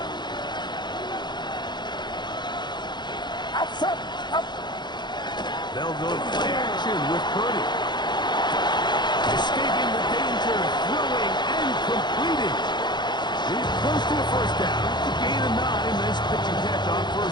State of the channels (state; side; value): late; right; 0.21 ms